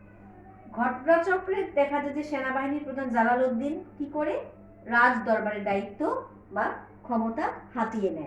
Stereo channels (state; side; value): identical; both; correlation 1.00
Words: ঘটনাচক্রে দেখা যায় যে সেনাবাহিনীর প্রধান জালালউদ্দিন কি করে রাজ দরবারের দায়িত্ব বা ক্ষমতা হাতিয়ে